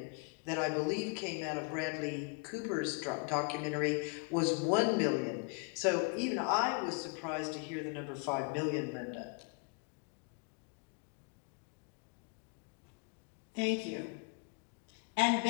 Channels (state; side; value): quieter; right; 35.2 dB